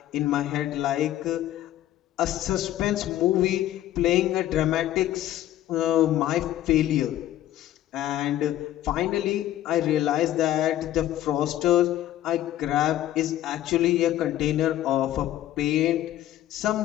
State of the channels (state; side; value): quieter; right; 13.3 dB